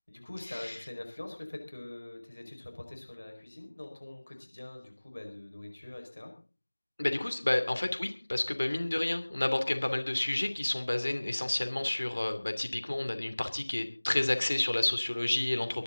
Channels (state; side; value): inverted; both; correlation -1.00